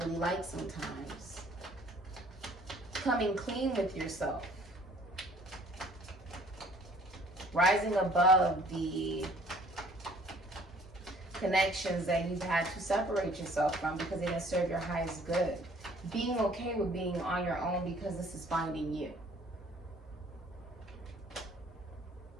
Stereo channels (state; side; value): normal; both; correlation 0.55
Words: like sometimes. Coming clean with yourself. Rising above the connections that you've had to separate yourself from because they didn't serve your highest good. Being okay with being on your own because this is finding you.